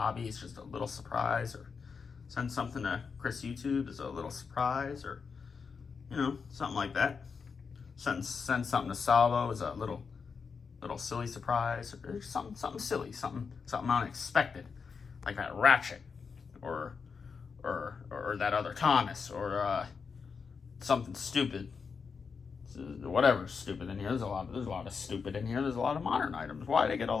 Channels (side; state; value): right; quieter; 5.5 dB